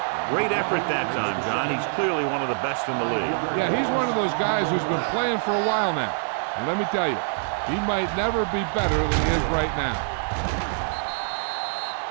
Great effort that time, John. He's clearly one of the best in the league. Yeah, he's one of those guys who's been playing for a while now. And let me tell you, he might never be better than he is right now.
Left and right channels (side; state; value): left; silent; 62 dB below the other